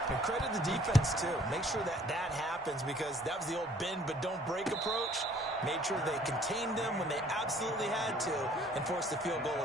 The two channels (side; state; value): both; normal; correlation 0.57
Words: And credit the defense, too. Make sure that happens, because that was the old bend but don't break approach. Made sure they contained them when they absolutely had to and forced the field goal